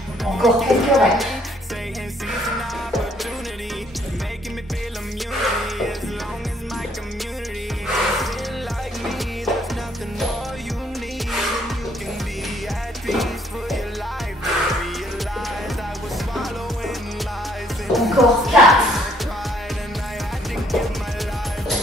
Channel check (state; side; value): normal; both; correlation 0.65